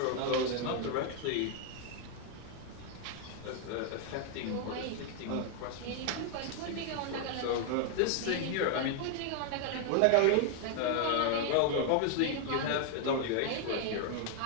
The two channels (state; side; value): different; both; correlation 0.00